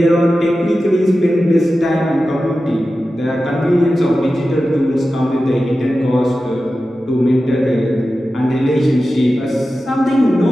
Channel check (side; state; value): both; normal; correlation 0.93